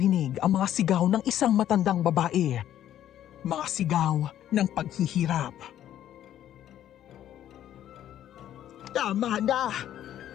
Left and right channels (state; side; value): quieter; right; 11.5 dB